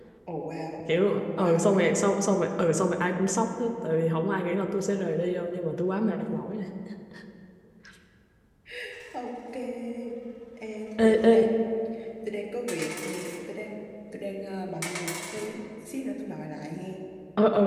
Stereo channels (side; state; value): both; identical; correlation 1.00